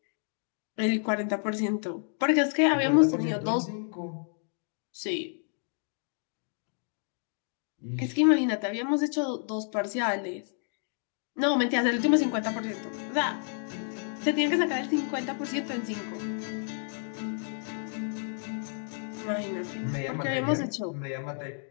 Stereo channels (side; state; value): right; silent; 58 dB below the other